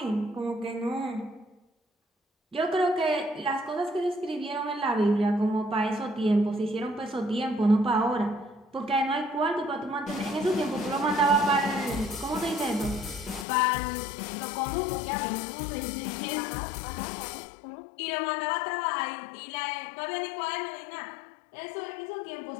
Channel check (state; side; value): drops out; right; at 13.5 s